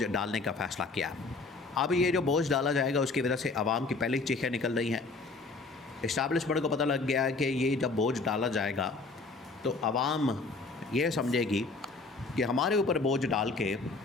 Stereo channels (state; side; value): quieter; right; 3.8 dB